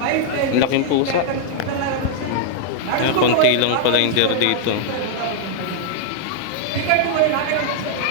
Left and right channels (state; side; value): different; both; correlation -0.01